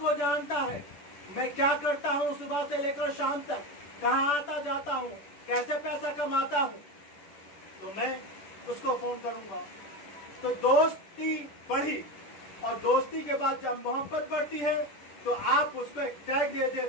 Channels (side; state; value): right; late; 10 ms